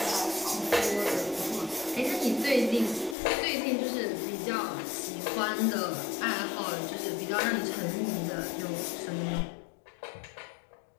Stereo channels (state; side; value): drops out; right; at 3.2 s